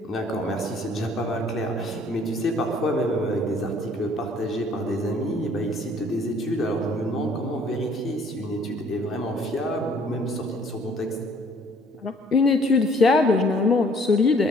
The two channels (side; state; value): both; normal; correlation 0.59